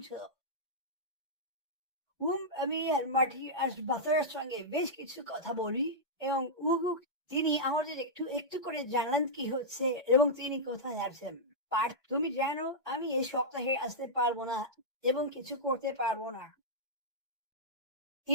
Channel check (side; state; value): both; normal; correlation -0.10